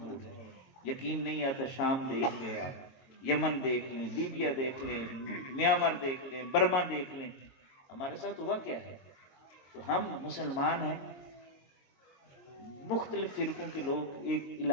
ہیں۔ یقین نہیں آتا، شام دیکھ لیں آپ، یمن دیکھ لیں، لیبیا دیکھ لیں، میانمار دیکھ لیں، برما دیکھ لیں، ہمارے ساتھ ہوا کیا ہے۔ تو ہم مسلمان ہیں، مختلف فرقوں کے لوگ ایک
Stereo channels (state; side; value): late; right; 22 ms